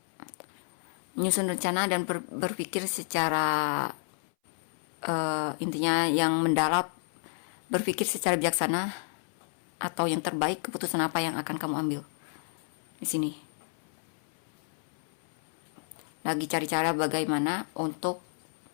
Menyusun rencana dan berpikir secara intinya yang mendalam, berpikir secara bijaksana atau yang terbaik, keputusan apa yang akan kamu ambil. Di sini lagi cari cara bagaimana untuk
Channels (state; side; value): silent; right; 57 dB below the other